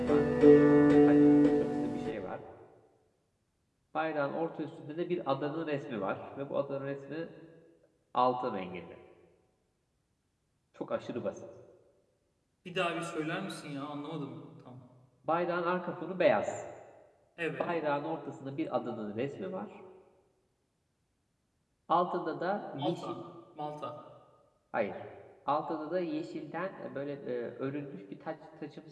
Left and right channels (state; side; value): identical; both; correlation 1.00